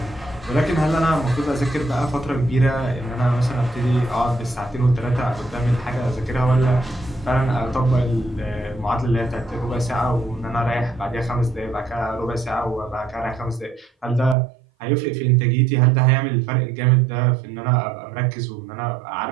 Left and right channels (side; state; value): left; drops out; at 14.4 s